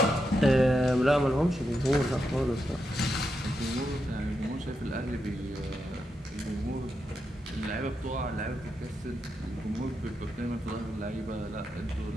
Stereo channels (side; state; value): both; normal; correlation 0.85